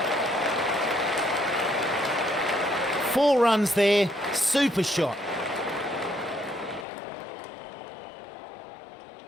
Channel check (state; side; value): drops out; right; at 6.9 s